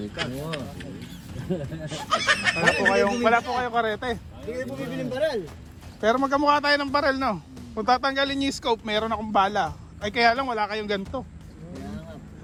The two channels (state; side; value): identical; both; correlation 1.00